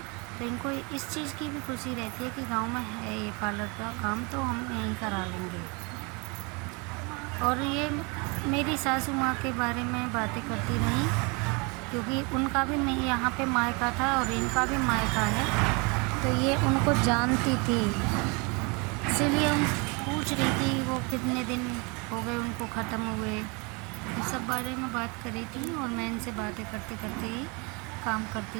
तो इनको इस चीज़ की भी खुशी रहती है कि गांव में है ये पार्लर का काम, तो हम यहीं करा लेंगे। और ये मेरी सासू माँ के बारे में बातें करती रहीं क्योंकि उनका भी नहीं यहाँ पे मायका था और इनका भी मायका है, तो ये उनको जानती थी, इसीलिए हम पूछ रही थी वो कितने दिन हो गए उनको ख़त्म हुए। इस सब बारे में बात कर रही थी और मैं इनसे बातें करते करते ही काम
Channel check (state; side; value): quieter; left; 30.1 dB